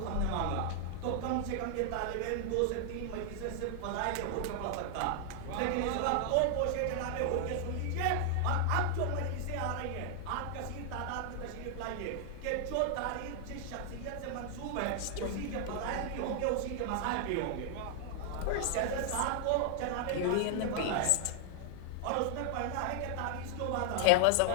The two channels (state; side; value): different; both; correlation 0.00